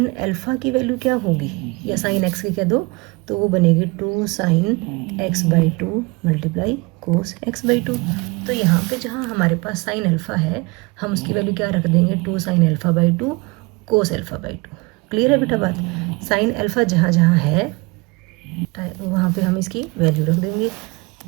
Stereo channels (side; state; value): left; quieter; 26.0 dB